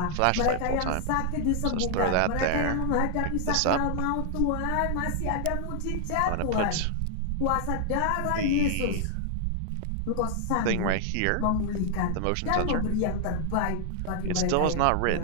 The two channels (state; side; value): different; both; correlation 0.00